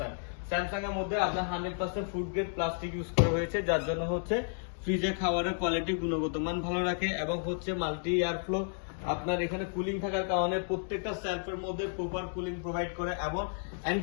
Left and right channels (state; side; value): silent; right; digital silence